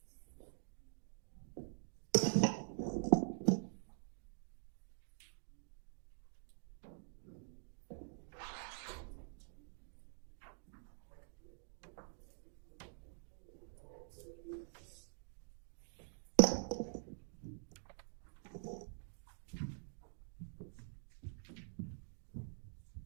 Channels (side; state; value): left; silent; digital silence